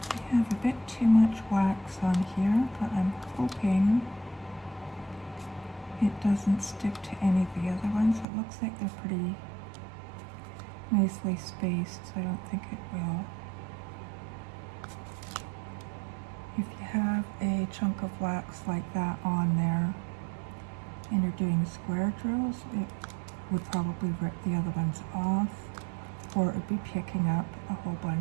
I have a bit too much wax on here, but I'm hoping it doesn't stick to any of the other ones. It looks like they're pretty nicely spaced, so I don't think it will. If you have a chunk of wax like that on there and you're doing square drills, it would probably rip the other ones off, or it would be picking up a whole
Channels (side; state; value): left; drops out; at 8.2 s